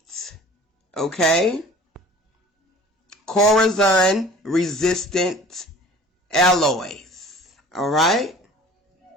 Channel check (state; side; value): normal; both; correlation 0.46